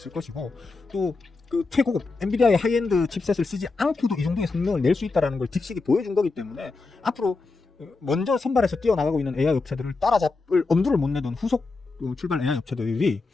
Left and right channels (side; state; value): right; quieter; 3.9 dB